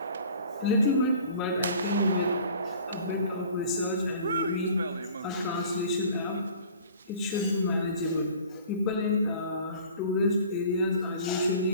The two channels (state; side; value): inverted; both; correlation -0.47